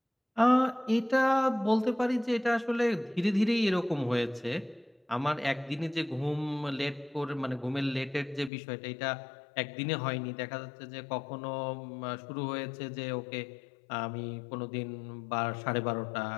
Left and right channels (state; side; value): drops out; right; at 8.5 s